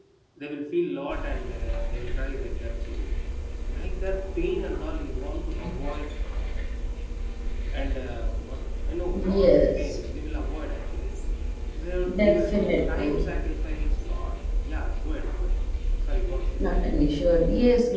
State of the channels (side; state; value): both; identical; correlation 1.00